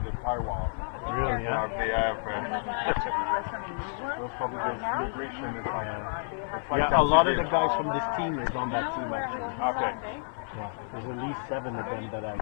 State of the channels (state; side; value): silent; right; digital silence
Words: the powwow. Really, yeah? They have, those probably the celebration is like Yeah, a lot of the guys from this team is on that team actually. Okay. Yeah, there's at least 7 of them that I